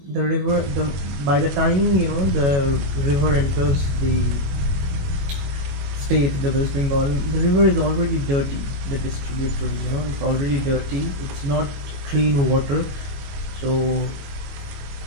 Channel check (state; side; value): late; left; 22 ms